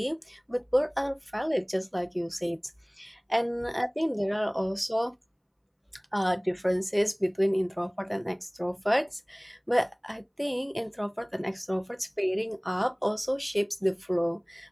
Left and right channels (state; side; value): identical; both; correlation 1.00